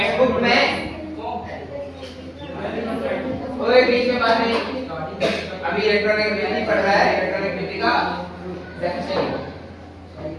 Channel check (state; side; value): identical; both; correlation 1.00